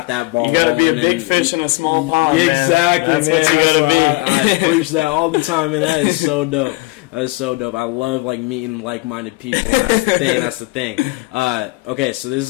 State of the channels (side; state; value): right; quieter; 22.9 dB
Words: that ball. You got to be a big fish in a small pond. Exactly, man. That's man. what you got to I be. preach that all the time, and that is so dope. That is so dope. I love, like, meeting like-minded people. That's the thing. That's the thing. Okay, so this